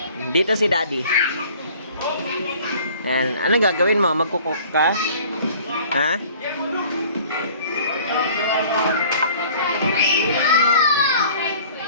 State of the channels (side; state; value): both; inverted; correlation -0.50